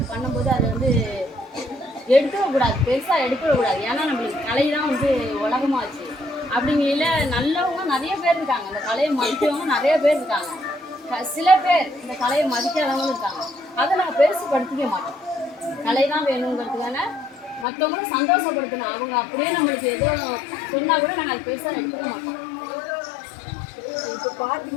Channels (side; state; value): right; drops out; at 17.7 s